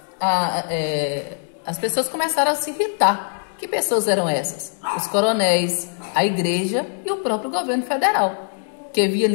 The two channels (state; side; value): silent; right; 64 dB below the other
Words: começaram a se irritar. Que pessoas eram essas? Os coronéis, a igreja e o próprio governo federal, que via